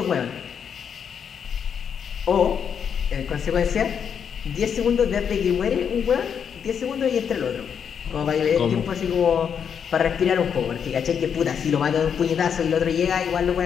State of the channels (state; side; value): quieter; right; 7.5 dB